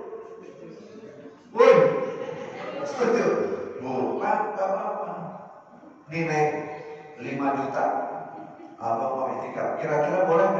Woi, setuju? Bukan, gak apa-apa. Nih Neng, 5 juta abang mau itikaf. Kira-kira boleh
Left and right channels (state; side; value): identical; both; correlation 1.00